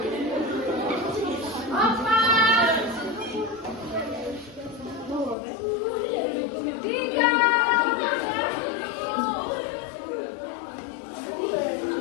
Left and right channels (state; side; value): drops out; right; at 5.4 s